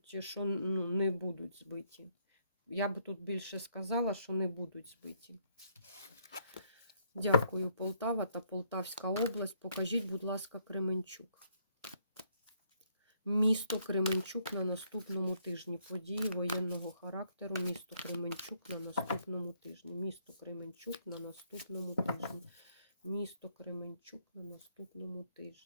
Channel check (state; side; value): inverted; both; correlation -0.70